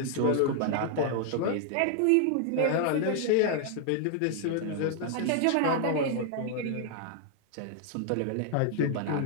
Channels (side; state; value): both; different; correlation 0.00